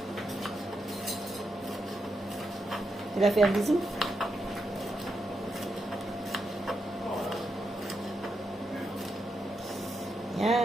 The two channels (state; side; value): normal; both; correlation 0.84